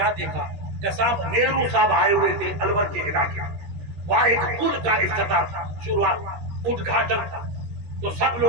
دیکھا کہ صاحب نہرو صاحب آئے ہوئے تھے الور کے علاقے میں، وہاں ایک پل کا افتتاح تھا، شروعات ادگھاٹن تھا، تو سب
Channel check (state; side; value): late; left; 13 ms